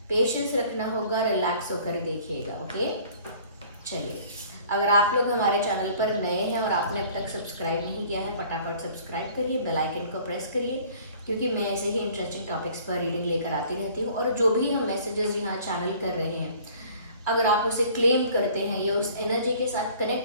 पेशेंस रखना होगा, रिलैक्स होकर देखिएगा, ओके। चलिए, अगर आप लोग हमारे चैनल पर नए हैं और आपने अब तक सब्सक्राइब नहीं किया है, फटाफट सब्सक्राइब करिए, बेल आइकन को प्रेस करिए, क्योंकि मैं ऐसे ही इंटरेस्टिंग टॉपिक्स पर रीडिंग लेकर आती रहती हूँ। और जो भी हम मैसेजेस यहाँ चैनल कर रहे हैं, अगर आप उसे क्लेम करते हैं या उस एनर्जी के साथ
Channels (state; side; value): inverted; both; correlation -0.52